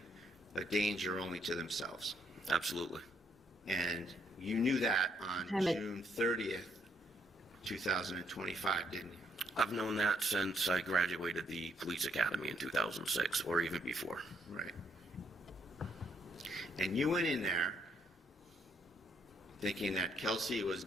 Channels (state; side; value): normal; both; correlation 0.72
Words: a danger only to themselves. Absolutely. And you knew that on Damn it. June 30th, 2025, didn't you? I've known that since I graduated the police academy in 2006, or even before. Right. And you went in there thinking that Kelsey was